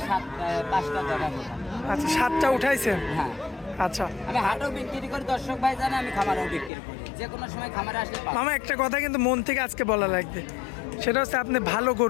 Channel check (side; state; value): right; drops out; at 6.7 s